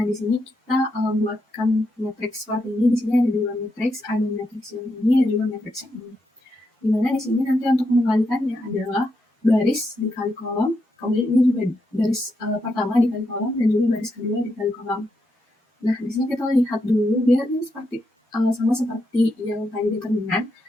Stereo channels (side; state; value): both; normal; correlation 0.82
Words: di sini kita buatkan matriks seperti ini. Di sini ada 2 matriks, ada matriks yang ini dan juga matriks yang ini. Dimana di sini nanti untuk mengalikannya adalah baris dikali kolom, kemudian ini juga baris pertama dikali kolom dan juga baris kedua dikali kolom. Nah, di sini kita lihat dulu biar ini seperti sama seperti yang tadi determinan,